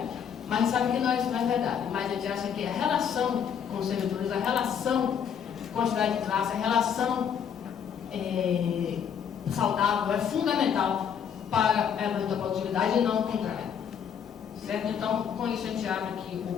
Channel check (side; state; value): right; quieter; 7.9 dB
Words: Mas sabe que não é verdade. Mas a gente acha que a relação com os servidores, a relação com a cidade de classe, a relação saudável é fundamental para a evolução da produtividade e não o contrário. Certo? Então, com isso a gente abre aqui